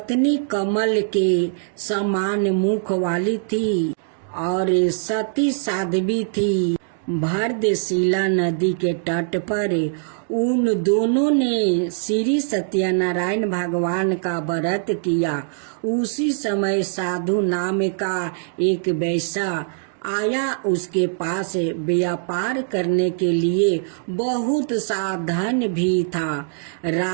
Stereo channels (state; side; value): silent; left; digital silence